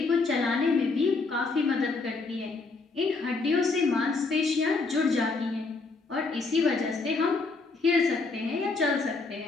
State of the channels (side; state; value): right; quieter; 3.9 dB